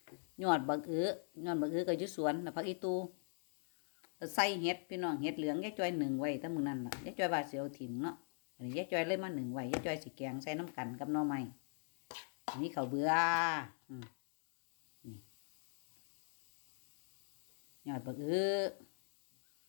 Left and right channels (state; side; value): silent; right; digital silence